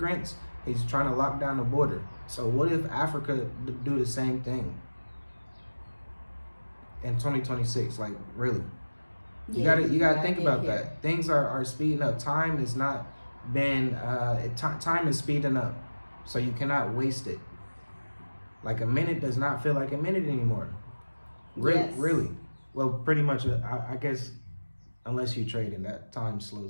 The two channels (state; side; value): inverted; both; correlation -1.00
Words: He's trying to lock down the border. So what if Africa do the same thing in 2026? Like, really? You gotta think about that. Things are speeding up. Time is not been time is speeding up, so you cannot waste it. Like, a minute does not feel like a minute anymore. Really. Well, pretty much, I guess, unless you trade and that time